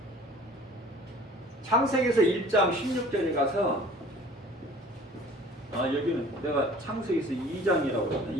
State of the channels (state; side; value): normal; both; correlation 0.48